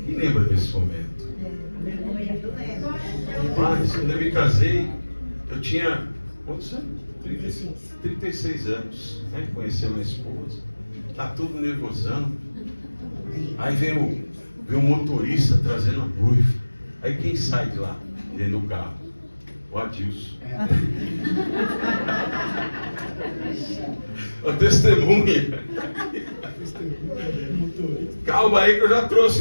Quem lembra desse momento? Mas quando eu me casei, eu tinha quantos anos? 36 anos, né? Conheci a minha esposa. Tá tudo nervosão. Aí vem o motorista trazendo a noiva. Aí quem sai de lá, dentro do carro? O Adilson. A testemunha. Calma aí que eu já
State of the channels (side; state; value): both; inverted; correlation -1.00